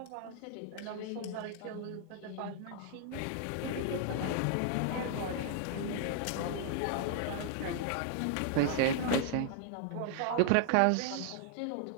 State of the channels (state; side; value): different; both; correlation 0.00